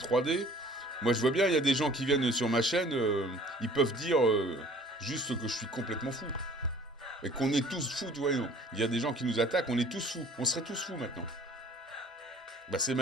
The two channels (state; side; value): normal; both; correlation 0.51